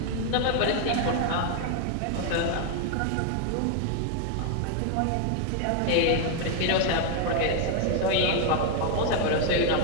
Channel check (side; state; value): both; different; correlation 0.00